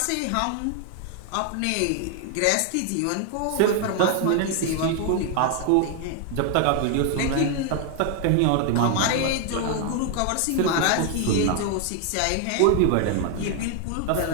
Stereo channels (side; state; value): both; different; correlation 0.00